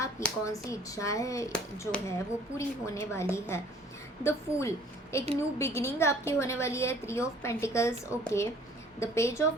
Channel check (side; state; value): both; normal; correlation 0.54